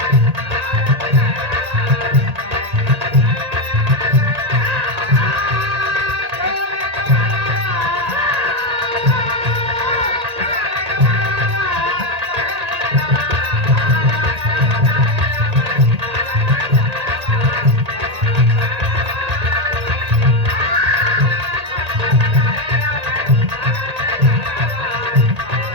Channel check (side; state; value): left; late; 1.8 ms